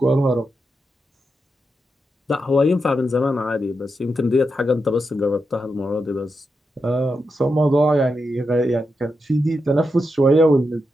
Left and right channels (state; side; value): normal; both; correlation 0.86